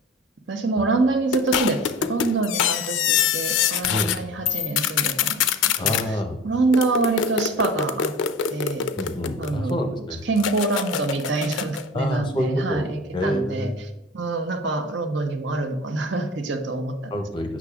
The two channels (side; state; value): both; normal; correlation 0.37